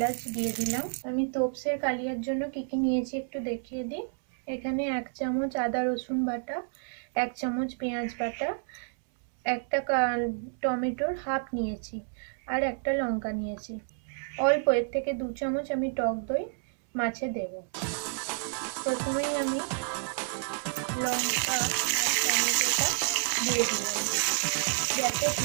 দিয়ে দিলাম। আমি তোপসের কালিয়ার জন্য কি কি নিয়েছি একটু দেখিয়ে দিই। এখানে 1 চামচ আদা রসুন বাটা, 1 চামচ পেঁয়াজ বাটা, একটা টমেটোর হাফ নিয়েছি, আর একটা লঙ্কা নিয়েছি। অল্প এর থেকে 2 চামচ আমি টক দই মাছে দেব। প্রথমেই আমি লঙ্কা আর টমেটোটা দিয়ে দিলাম। গ্যাসের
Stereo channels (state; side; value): silent; left; 58 dB below the other